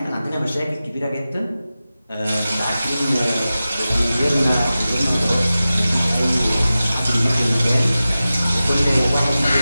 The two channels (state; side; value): inverted; both; correlation -0.95